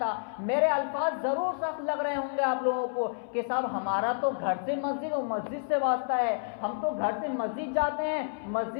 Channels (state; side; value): silent; right; 58 dB below the other